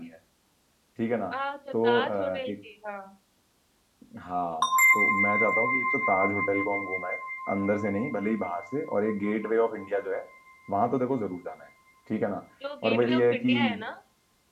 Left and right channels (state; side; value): identical; both; correlation 1.00